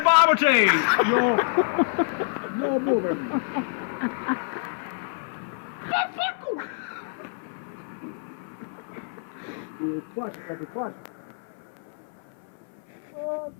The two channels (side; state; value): right; silent; 58 dB below the other